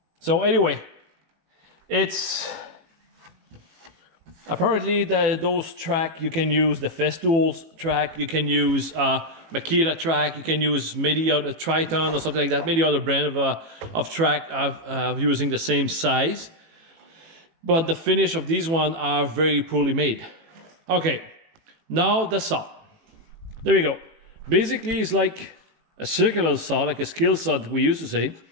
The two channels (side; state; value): left; late; 18 ms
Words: So anyway, it's apparently those track, you can use the Festool's track, you can use Makita track, you can use maybe a Triton or something like that, maybe other brand of track using the same size. But the finish of these ones are very poorly made. Okay, now the saw. There we go. Basically, it's like a circular saw, like a skill saw that we used to say.